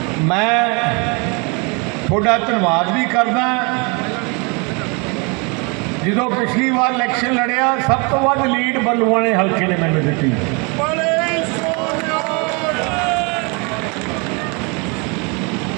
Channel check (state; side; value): quieter; left; 31.5 dB